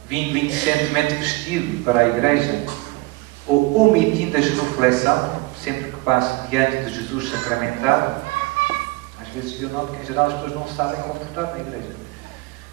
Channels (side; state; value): left; quieter; 22.2 dB